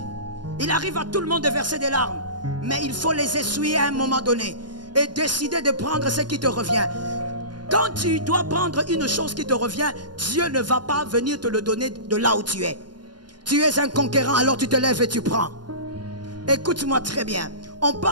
Il arrive à tout le monde de verser des larmes. Mais il faut les essuyer à un moment donné. Et décider de prendre ce qui te revient. Quand tu dois prendre une chose qui te revient, Dieu ne va pas venir te le donner de là où tu es. Tu es un conquérant, alors tu te lèves et tu prends. Écoute-moi très bien. On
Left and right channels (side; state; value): left; late; 0.71 ms